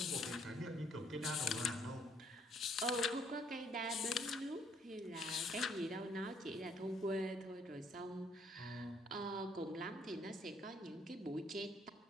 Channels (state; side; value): normal; both; correlation 0.67